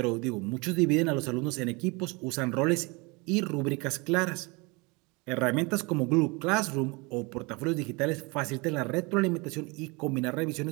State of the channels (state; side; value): quieter; left; 27.6 dB